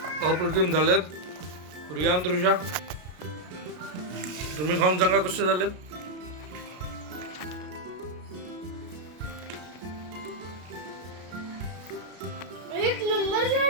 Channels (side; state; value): left; late; 33 ms